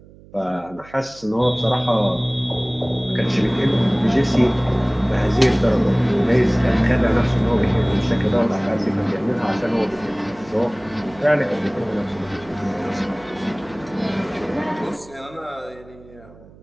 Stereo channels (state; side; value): noise; right; hum, 23 dB below the sound